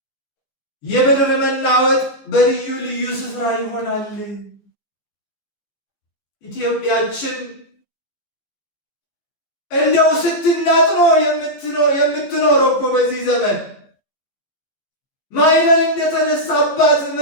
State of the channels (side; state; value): right; late; 15 ms